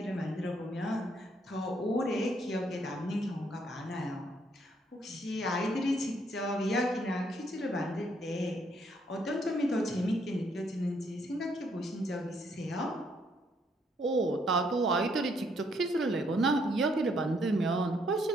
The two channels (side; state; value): both; normal; correlation 0.70